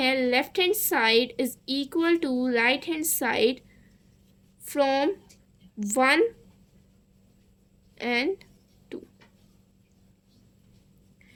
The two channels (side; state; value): both; identical; correlation 1.00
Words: left hand side is equal to right hand side from 1 and 2।